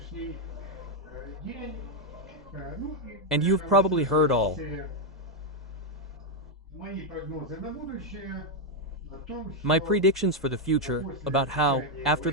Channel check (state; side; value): normal; both; correlation 0.02